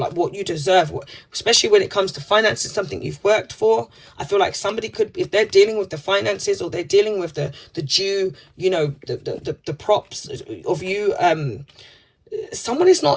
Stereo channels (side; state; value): both; identical; correlation 1.00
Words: what you deserve, especially when it comes to finances, something you've worked for. I feel like somebody could, if they're dealing with the finances or they're dealing with the due, you know, the props of you, someone is